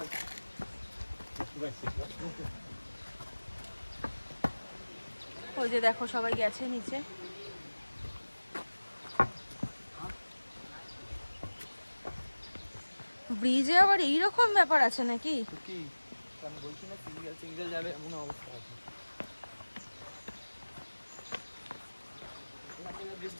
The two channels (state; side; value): inverted; both; correlation -1.00